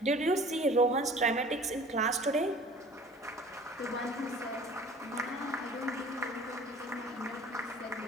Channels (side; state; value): both; normal; correlation 0.47